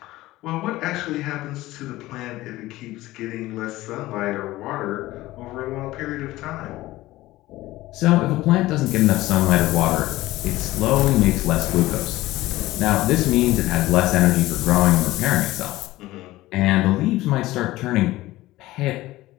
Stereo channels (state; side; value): quieter; right; 17.4 dB